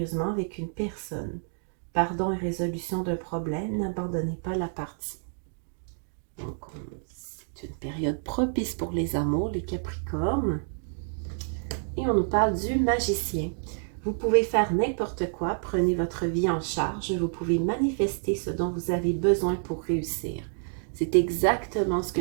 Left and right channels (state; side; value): silent; left; digital silence